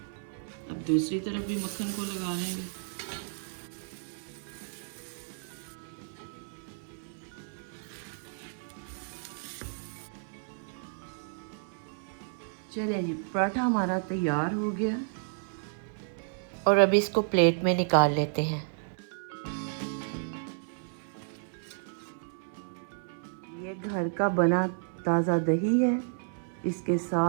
अब दूसरी तरफ भी मक्खन को लगा लेंगे। चलिए जी, पराठा हमारा तैयार हो गया और अभी इसको प्लेट में निकाल लेते हैं। ये घर का बना ताज़ा दही है, इसके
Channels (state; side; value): silent; left; 57 dB below the other